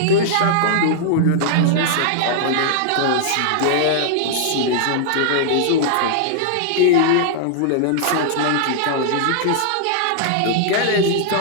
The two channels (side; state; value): both; different; correlation -0.01